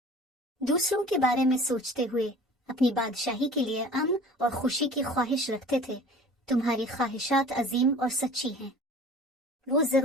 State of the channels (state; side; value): normal; both; correlation 0.44